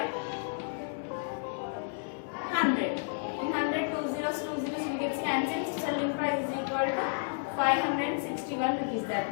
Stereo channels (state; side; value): silent; right; 57 dB below the other